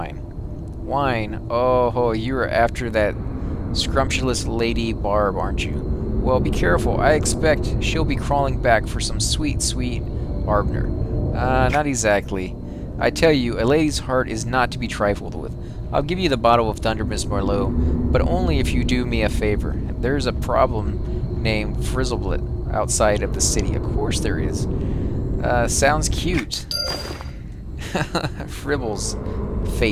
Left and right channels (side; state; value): both; identical; correlation 1.00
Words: Wine? Oh, you're after that scrumptious Lady Barb, aren't you? Well, be careful. I expect she'll be crawling back for some sweet, sweet Arbner. Not exactly. I tell you, a lady's heart is not to be trifled with. I'll give you the bottle of Thundermist Merlot, but only if you do me a favor. There's a problem named Frizzleblit outside of the city. Of course there is. Sounds cute. Fribbles.